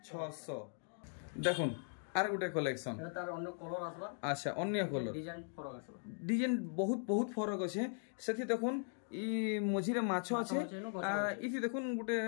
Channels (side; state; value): right; silent; 52 dB below the other